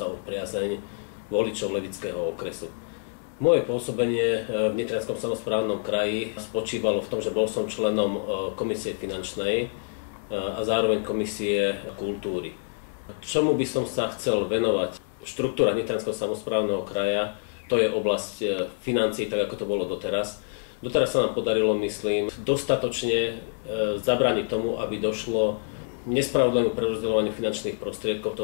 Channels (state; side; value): silent; right; digital silence